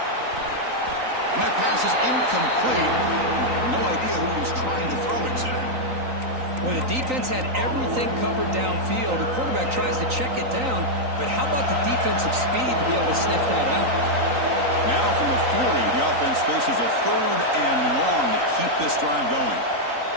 And that pass is incomplete. No idea who he was trying to throw it to. Well, the defense had everything covered downfield. The quarterback tries to check it down, but how about the defensive speed to be able to sniff that out? Now from the 40, the offense faces a 3rd and long to keep this drive going.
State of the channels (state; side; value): late; left; 3.9 ms